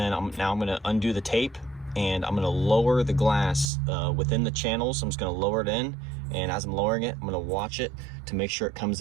now I'm gonna undo the tape and I'm gonna lower the glass within the channels. I'm just gonna lower it in, and as I'm lowering it, I'm gonna watch it to make sure it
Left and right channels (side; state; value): left; drops out; at 3.7 s